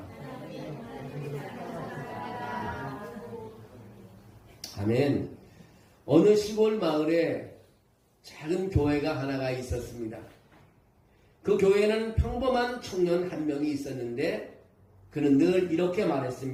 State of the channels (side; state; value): both; identical; correlation 1.00